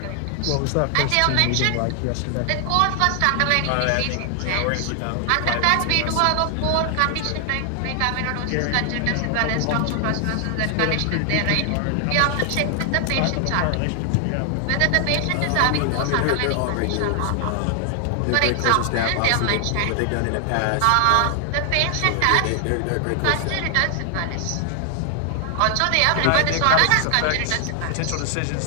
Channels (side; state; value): both; different; correlation 0.00